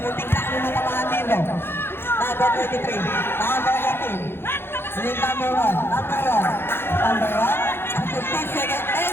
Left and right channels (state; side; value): late; right; 0.11 ms